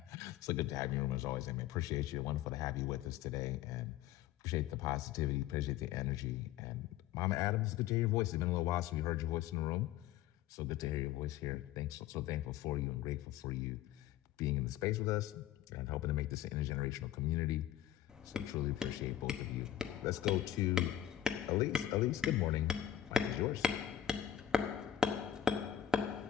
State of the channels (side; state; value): right; quieter; 11.4 dB